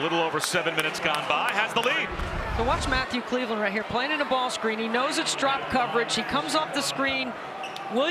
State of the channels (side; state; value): both; identical; correlation 1.00